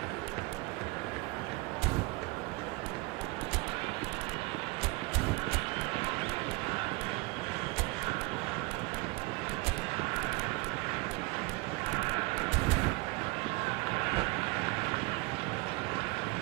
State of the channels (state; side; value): quieter; left; 24.5 dB